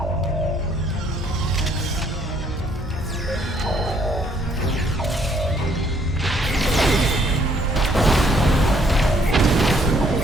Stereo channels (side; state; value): both; normal; correlation 0.66